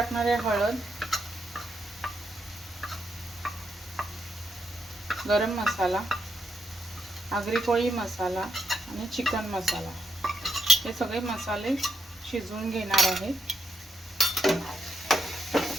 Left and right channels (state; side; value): normal; both; correlation 0.80